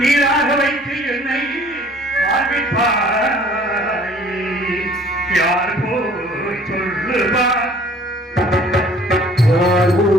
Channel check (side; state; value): both; normal; correlation 0.54